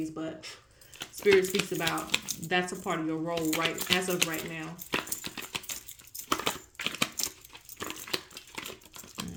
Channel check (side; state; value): both; identical; correlation 1.00